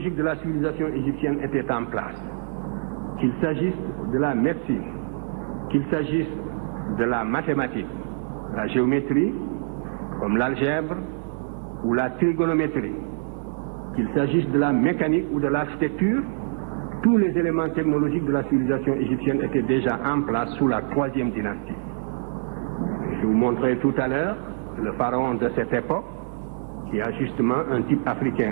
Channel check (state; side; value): silent; left; digital silence